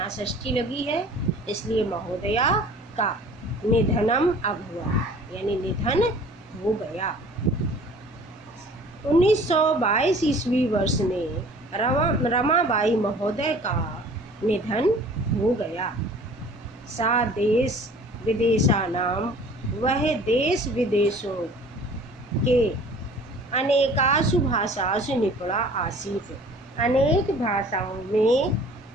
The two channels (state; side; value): normal; both; correlation 0.49